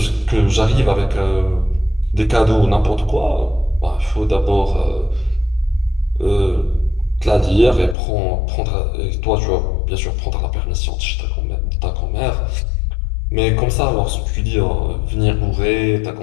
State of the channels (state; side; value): drops out; right; at 8.0 s